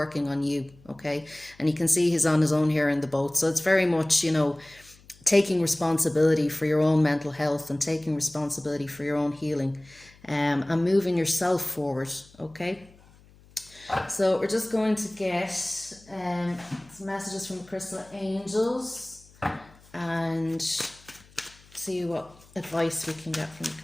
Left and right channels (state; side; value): noise; left; hum, 26 dB below the sound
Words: on you, okay? And you can see he's on his own here in the boat. So it's very much, you know, taking responsibility for your own mental health and taking responsibility for your own healing, and moving yourself forward, okay? So we're just going to get some messages from the crystal angels and see what advice we can get from the